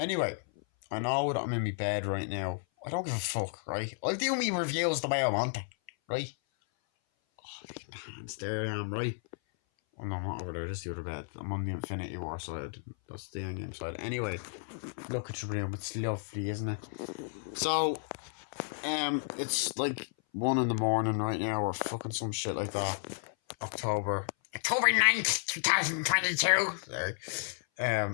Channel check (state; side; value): silent; right; 56 dB below the other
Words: I know that I'm in my bed right now. I don't give a fuck, right? I'll do me reviews the way I want it, right? Hands there I am, right? Oh no, I'm not over there, just the other bed. I'm on the Infinity War side. That's the Endgame side. Anyway, look at your room. It's lovely, isn't it? So, it's like 1 in the morning right now, or fucking some shit like that. October 9th, 2022. Sorry.